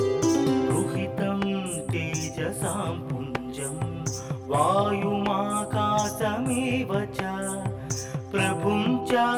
रुहितं तेजसां पुञ्जं वायुमाकाशमेव च प्रभुं च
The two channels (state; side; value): identical; both; correlation 1.00